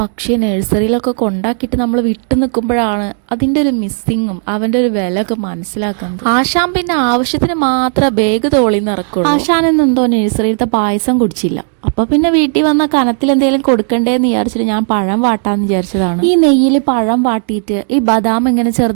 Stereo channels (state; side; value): silent; left; 56 dB below the other